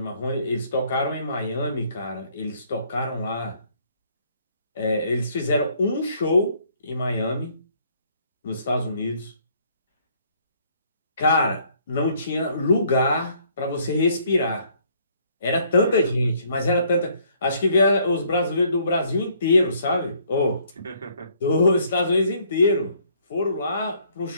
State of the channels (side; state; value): both; inverted; correlation -0.65